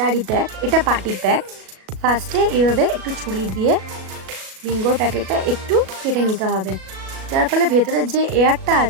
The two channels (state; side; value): late; left; 37 ms